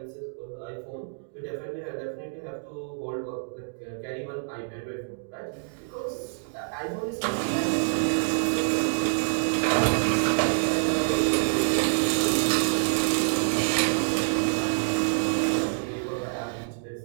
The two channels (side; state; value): left; silent; digital silence